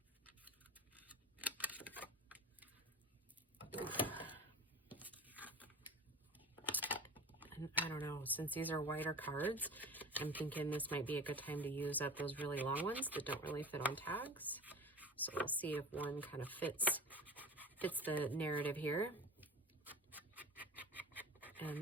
And I don't know, since these are wider cards, I'm thinking this might be a good time to use up those really long ones that don't really fit on tags. So we'll see if one kind of fits the narrative here. And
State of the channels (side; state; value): both; normal; correlation 0.33